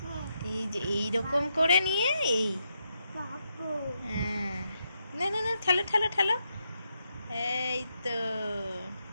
এই যে এইরকম করে নিয়ে এই, হ্যাঁ না না না, ঠেলো ঠেলো ঠেলো, এই তো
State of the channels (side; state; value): both; inverted; correlation -0.82